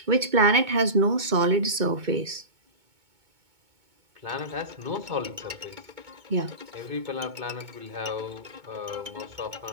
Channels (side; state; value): left; late; 2.2 ms